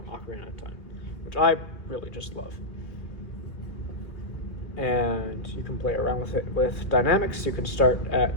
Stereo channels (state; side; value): late; right; 2.2 ms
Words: Ocarina of Time, which I really just love. And you can play around with it with dynamics. You can start at